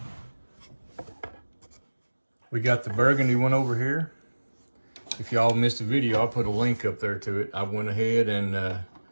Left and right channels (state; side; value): inverted; both; correlation -1.00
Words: We got the burgundy one over here. If y'all missed the video, I'll put a link up there to it. I went ahead and